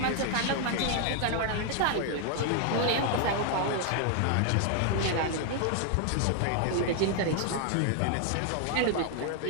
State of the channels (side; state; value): both; different; correlation 0.00